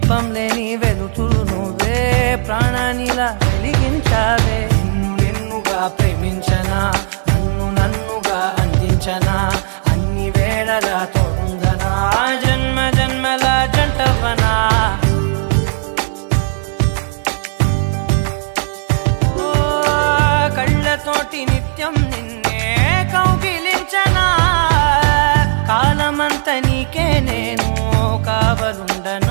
లేని వెలుతురు నువ్వే, ప్రాణానిలా వెలిగించావే. నిన్నుగా ప్రేమించనా, నన్నుగా అందించనా, అన్ని వేళలా తోడుందనా, జన్మ జన్మల జంటవనా. కళ్ళతోటి నిత్యం నిన్నే కౌగిలించనా, కాలమంత నీకే నేను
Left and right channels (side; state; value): left; silent; digital silence